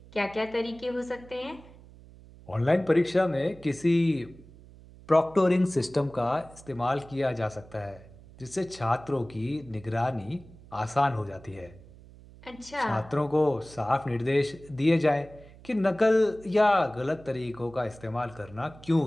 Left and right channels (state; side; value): noise; right; hum, 21 dB below the sound